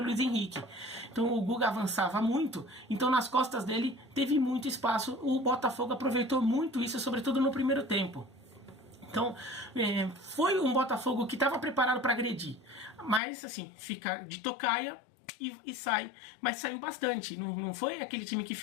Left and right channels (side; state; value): right; drops out; at 13.2 s